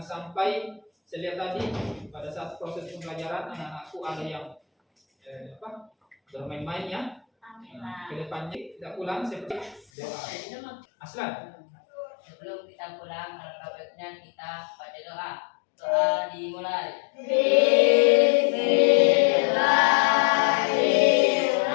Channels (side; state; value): right; drops out; at 9.9 s